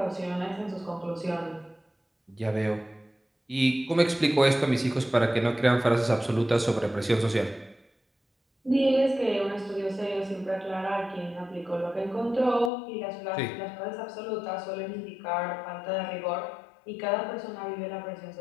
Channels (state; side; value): drops out; right; at 12.7 s